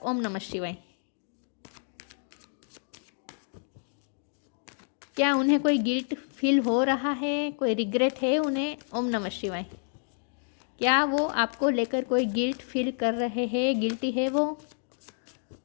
ओम नमः शिवाय। क्या उन्हें कोई गिल्ट फील हो रहा है, कोई रिग्रेट है उन्हें। ओम नमः शिवाय। क्या वो आपको लेकर कोई गिल्ट फील कर रहे हैं, गिल्टी है वो।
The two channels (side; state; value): right; silent; digital silence